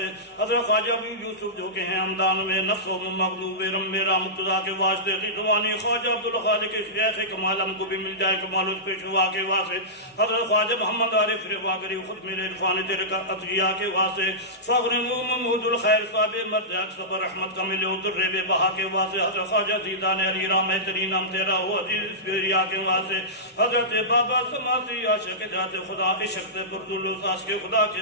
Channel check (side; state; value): both; normal; correlation -0.16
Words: حضرت خواجہ ابو یوسف جو کہ ہیں ہمدان میں نفس و مغلوب رم میرا مقتدا کے واسطے رضوانی خواجہ عبدالخالق شیخ کمال ہم کو بھی مل جائے کمال اس پیشوا کے واسطے حضرت خواجہ محمد عارف رواگری خود میرے عرفان تلک عطیہ کے واسطے فخر محمود الخیر صاحب مرد صبر رحمت کا ملے اتر بے بہا کے واسطے حضرت خواجہ زیدان علی رام ترین نام تیرا ہو عزیز اسپیریا کے واسطے حضرت بابا سماسی عاشق ذات خدا عشق بردالوساس کے خدا کے